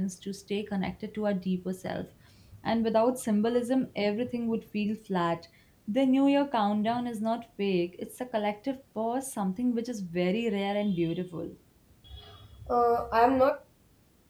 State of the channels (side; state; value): both; identical; correlation 1.00